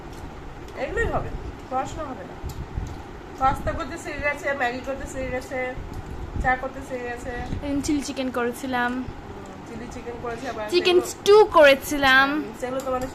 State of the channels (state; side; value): identical; both; correlation 1.00